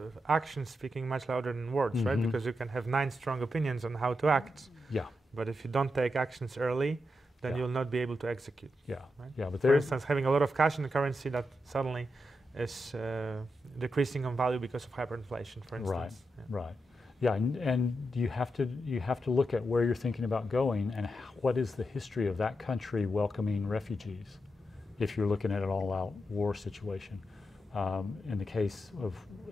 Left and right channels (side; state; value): both; normal; correlation 0.86